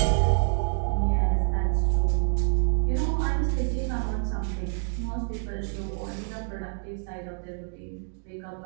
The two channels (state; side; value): silent; left; 60 dB below the other